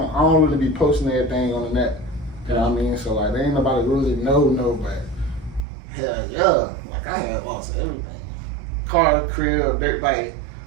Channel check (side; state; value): left; drops out; at 5.6 s